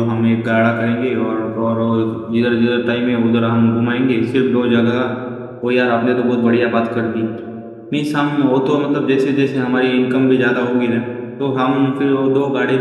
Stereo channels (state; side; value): identical; both; correlation 1.00